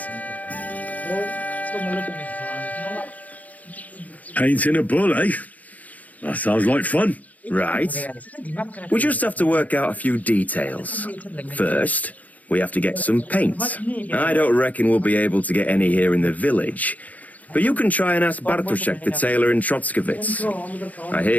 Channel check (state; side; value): late; right; 0.076 ms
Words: Painting a bull, eh? That sounds like fun. Right. We just have to work out a few details. First, we have to get some paint. I don't reckon we'll be able to get any here in the village, but you can try and ask Bartoszek, the tailor in Trotskovitz. I